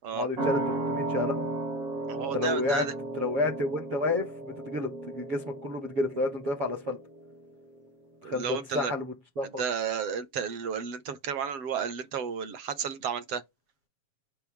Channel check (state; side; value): late; left; 7.3 ms